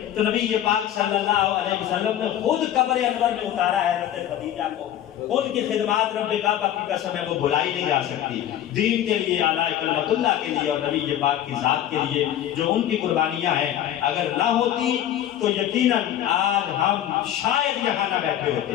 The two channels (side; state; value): right; quieter; 11.4 dB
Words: تو نبی پاک صلی اللہ علیہ وسلم نے خود قبر انور میں اتارا ہے حضرت خدیجہ کو۔ ان کی خدمات رب کعبہ کی قسم ہے وہ بھلائی نہیں جا سکتی، دین کے لیے، اعلیٰ کلمت اللہ کے لیے، اور نبی پاک کی ذات کے لیے جو ان کی قربانیاں ہیں، اگر نہ ہوتی تو یقیناً آج ہم شاید یہاں نہ بیٹھے